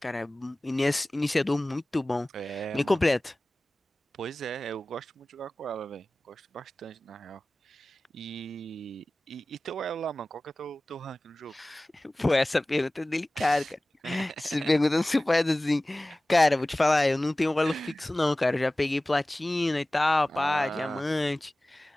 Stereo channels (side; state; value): both; normal; correlation 0.98